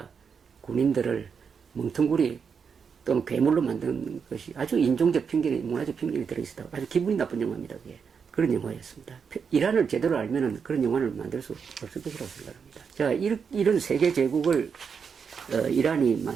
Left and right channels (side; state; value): left; quieter; 6.2 dB